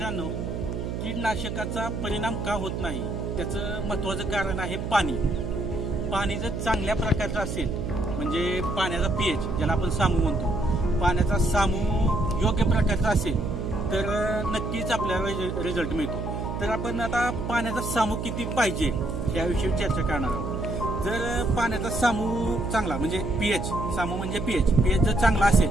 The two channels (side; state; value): right; noise; hum, 4 dB below the sound